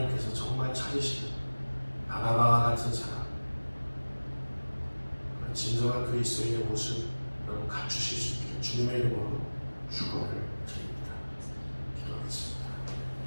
정말 찾으시는 바나바와 같은 사람, 진정한 그리스도인의 모습 여러분 갖추실 수 있기를 주님의 이름으로 축원을 드립니다. 기도하겠습니다.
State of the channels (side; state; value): both; inverted; correlation -1.00